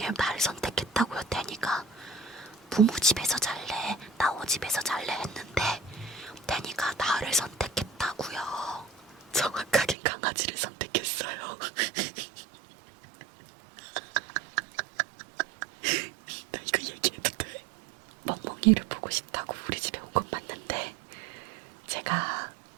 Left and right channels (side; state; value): left; drops out; at 10.0 s